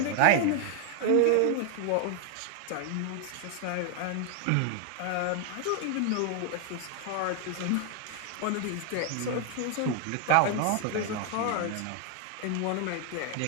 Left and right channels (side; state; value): both; different; correlation 0.00